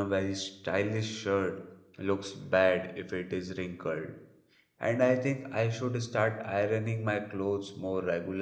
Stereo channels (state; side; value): identical; both; correlation 1.00